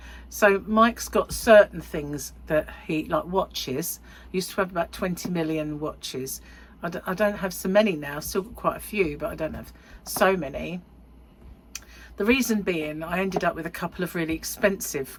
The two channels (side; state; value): both; identical; correlation 1.00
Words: So Mike's got certain things that he, like watches, used to have about 20 million watches. I don't have so many now, still got quite a few, but I don't have so many. The reason being, I ended up with a couple of really expensive